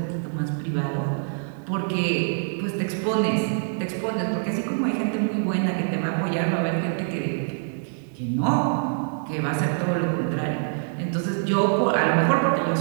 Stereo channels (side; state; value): left; silent; digital silence